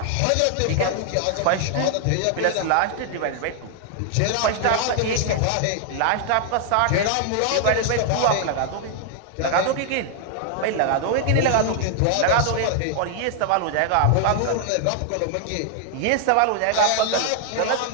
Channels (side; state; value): both; different; correlation 0.00